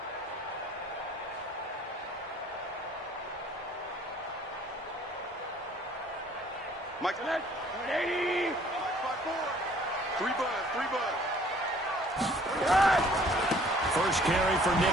Mike, 180. 3 bud. First carry for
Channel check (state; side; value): normal; both; correlation 0.56